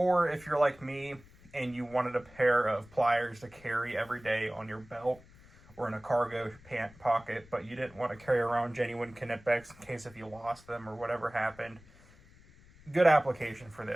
if you're like me and you wanted a pair of pliers to carry every day on your belt or in a cargo pant pocket, but you didn't want to carry around genuine Knipex in case if you lost them or whatever happened, good application for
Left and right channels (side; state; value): left; noise; rumble, 24 dB below the sound